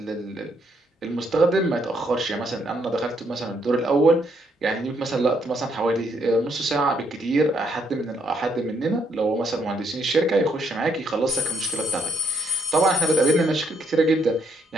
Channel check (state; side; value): normal; both; correlation 0.72